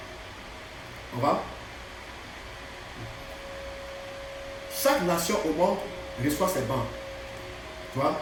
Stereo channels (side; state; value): both; identical; correlation 1.00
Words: On va? Chaque nation au monde reçoit ses bandes. Tu vois,